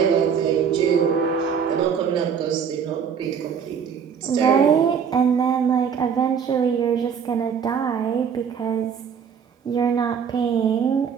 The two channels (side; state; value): left; quieter; 7.1 dB